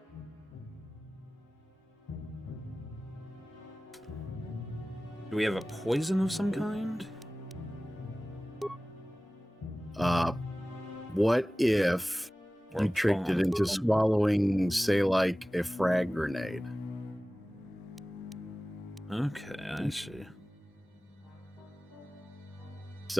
Do we have a poison of some kind? What if you tricked it into swallowing, say, like a frag grenade? Okay, I see.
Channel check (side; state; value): both; normal; correlation 0.97